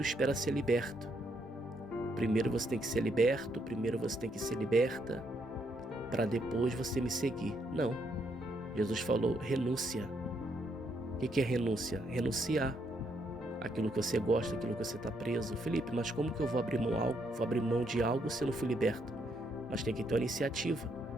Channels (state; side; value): normal; both; correlation 0.75